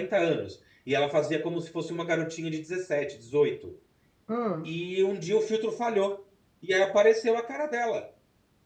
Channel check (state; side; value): identical; both; correlation 1.00